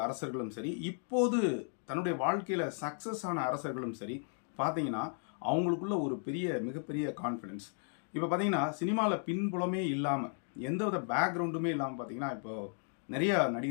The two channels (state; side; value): silent; right; 55 dB below the other